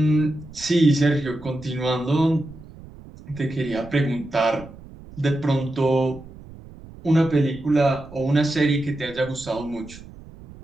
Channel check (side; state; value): right; noise; rumble, 18 dB below the sound